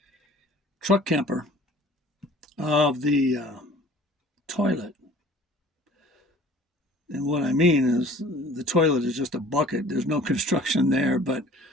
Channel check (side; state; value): both; normal; correlation 0.49